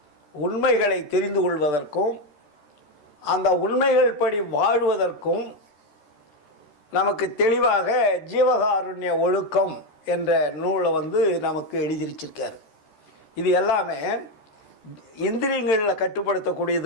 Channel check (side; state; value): right; late; 13 ms